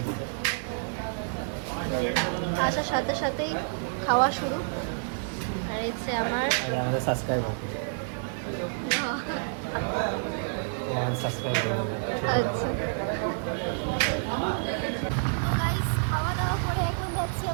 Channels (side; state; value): left; silent; digital silence